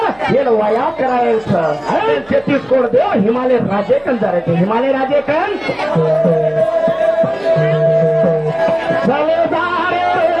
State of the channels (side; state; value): right; noise; hum, 29 dB below the sound